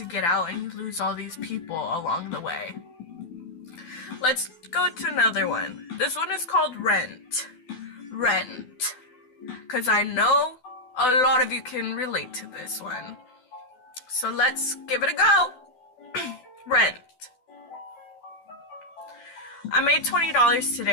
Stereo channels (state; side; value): late; right; 12 ms